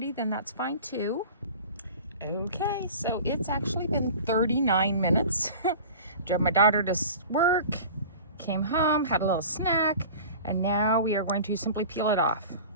then that's fine too. Okay, so it's actually been 39 minutes. Drove my daughter to work, came home, had a little snack, and now we are going to simply peel it off.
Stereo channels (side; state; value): both; inverted; correlation -0.39